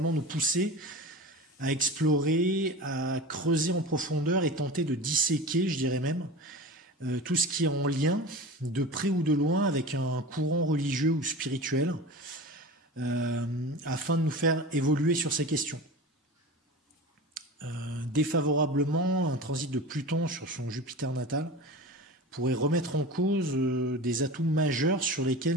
nous pousser à explorer, à creuser en profondeur et tenter de disséquer, je dirais même, tout ce qui est en lien, de près ou de loin, avec un courant religieux ou spirituel, afin de nous faire évoluer sur ces questions. Défavorablement, un transit de Pluton sur son Jupiter natal pourrait remettre en cause des atouts majeurs sur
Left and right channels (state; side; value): normal; both; correlation 0.32